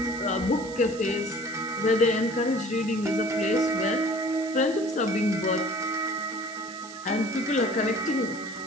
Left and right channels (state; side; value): noise; right; hiss, 17 dB below the sound